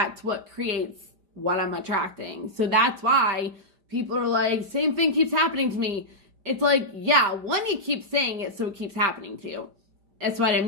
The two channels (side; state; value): left; late; 5.0 ms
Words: what creates what I'm attracting. So that's why people are like, same thing keeps happening to me. It's like, yeah, one, you keep saying it, so it keeps happening to you. That's what I